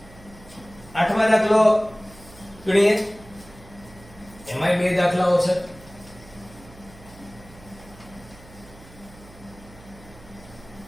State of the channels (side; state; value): right; noise; hum, 21 dB below the sound